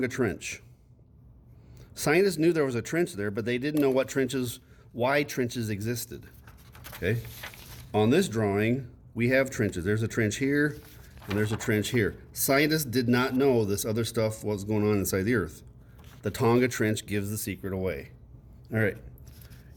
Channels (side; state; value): both; identical; correlation 1.00